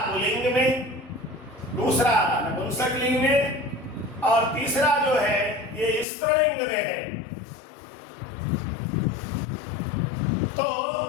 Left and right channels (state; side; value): drops out; right; at 6.1 s